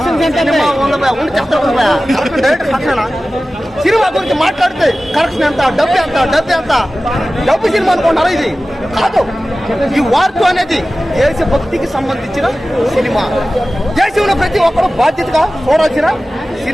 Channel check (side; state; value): both; normal; correlation 0.96